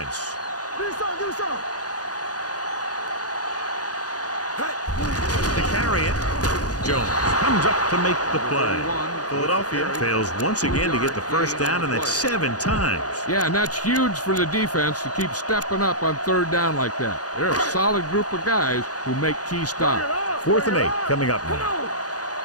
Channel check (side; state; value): right; late; 0.68 ms